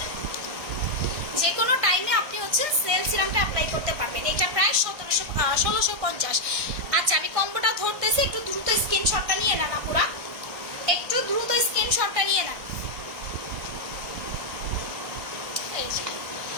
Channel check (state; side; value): late; left; 1.6 ms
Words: যে কোনো টাইমে আপনি হচ্ছে সেল সিরামটা অ্যাপ্লাই করতে পারবেন। এটা প্রায় 1650। আচ্ছা আমি কম্বোটা ধরতেছি, একটু দ্রুত স্ক্রিনশটটা নিয়ে নেন আপুরা, একটু দ্রুত স্ক্রিনশটটা নিয়ে নেন।